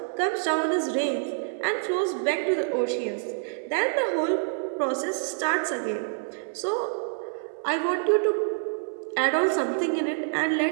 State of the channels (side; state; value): left; silent; digital silence